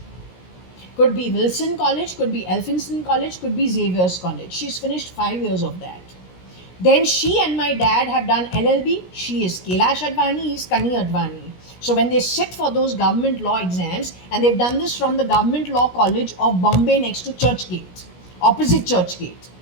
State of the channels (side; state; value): right; late; 17 ms